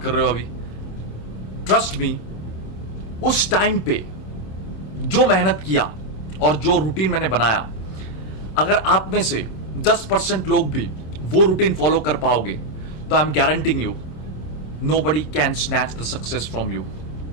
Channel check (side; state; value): right; late; 26 ms